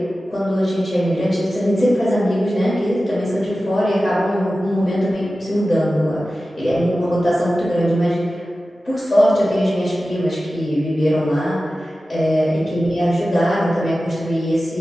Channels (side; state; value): both; normal; correlation 0.95